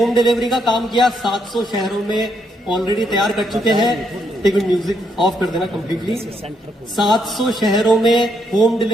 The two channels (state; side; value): normal; both; correlation 0.76